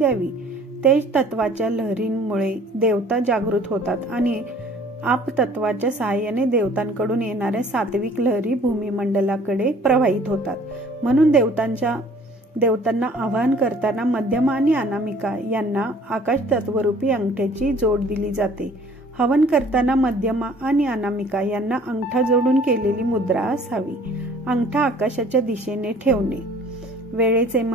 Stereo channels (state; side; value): normal; both; correlation 0.53